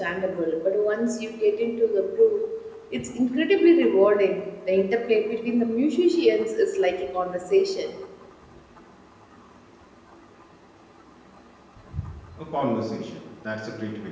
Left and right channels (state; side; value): identical; both; correlation 1.00